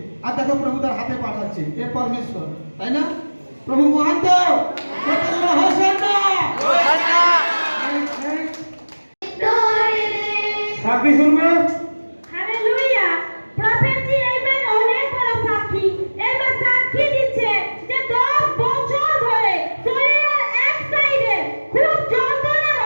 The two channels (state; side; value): inverted; both; correlation -1.00